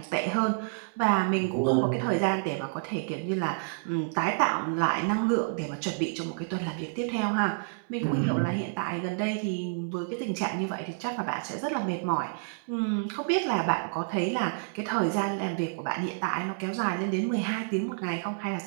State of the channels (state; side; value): silent; left; 59 dB below the other